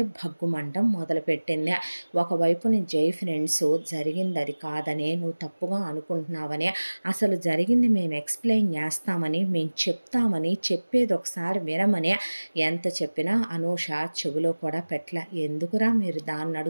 భగ్గుమంటం మొదలుపెట్టింది. ఒకవైపుని జై ఫ్రెండ్స్ జరిగింది అది కాదని, నువ్వు తప్పుగా అనుకుంటున్నావని, అసలు జరిగింది మేము ఎక్స్ప్లెయిన్ చేస్తామని, మేము చెప్తామని, చెప్పేది ఒకసారి వినమని ఎంత చెప్పినా అనూష చెవిలో కూడా పెట్టల. ఎందుకురా మీరు దాన్ని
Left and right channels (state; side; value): inverted; both; correlation -1.00